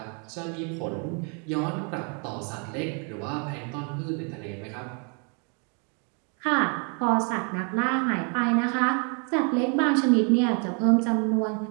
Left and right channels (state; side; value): quieter; left; 37.3 dB